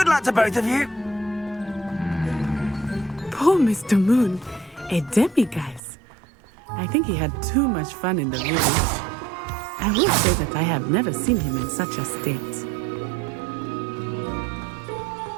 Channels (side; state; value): left; drops out; at 5.8 s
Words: luck to both of you. Poor Mr. Moon. A demiguise. I think he had too much fun in the village. I will say that I have never seen him in such a state.